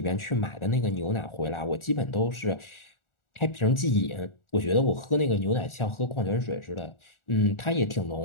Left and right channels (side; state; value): right; late; 1.4 ms